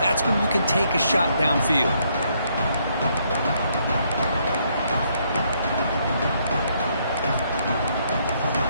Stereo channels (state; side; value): inverted; both; correlation -0.72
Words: when you can take a shot downfield.